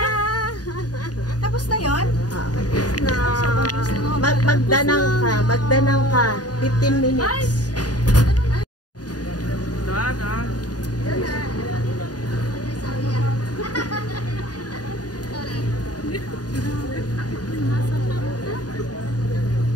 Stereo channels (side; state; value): right; late; 0.68 ms